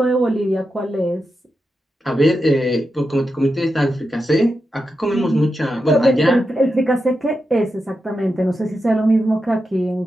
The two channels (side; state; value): both; normal; correlation 0.88